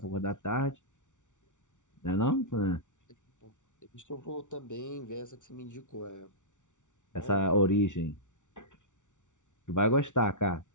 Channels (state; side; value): late; right; 0.86 ms